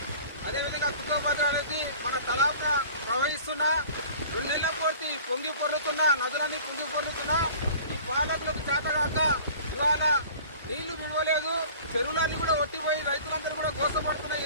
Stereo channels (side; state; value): both; inverted; correlation -0.45